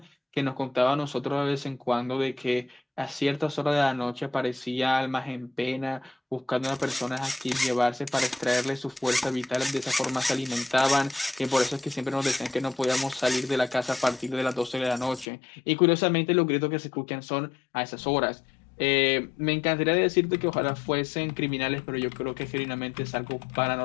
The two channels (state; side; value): drops out; right; at 15.2 s